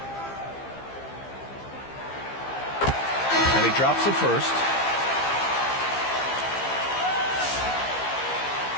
And he drops the first.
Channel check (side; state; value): right; late; 15 ms